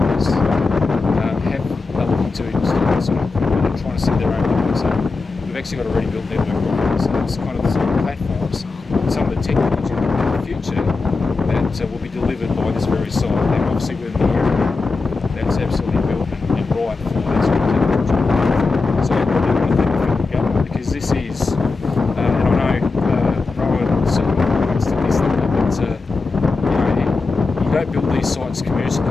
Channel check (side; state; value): right; quieter; 4.1 dB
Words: have are looking to install this sort of equipment and trying to set their own network, so we've actually got a ready built network on it. So it's kind of the sort of platforms, some of the technology in the future that will be delivered by this very site. And obviously we're in the area that's absolutely built and right for that sort of technology. So I really want to thank the federal government, because this is, and I know Rowan sort of wants to list them, but you know, you don't build these sites